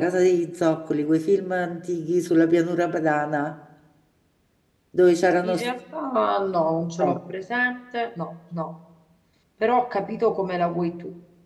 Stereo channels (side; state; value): both; identical; correlation 1.00